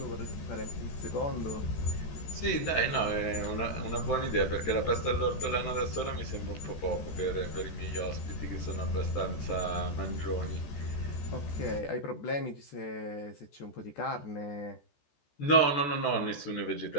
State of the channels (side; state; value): right; late; 14 ms